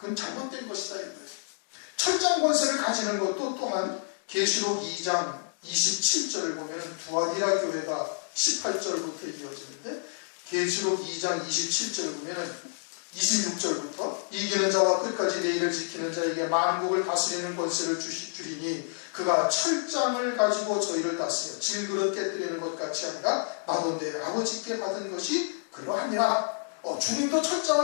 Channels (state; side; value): silent; right; digital silence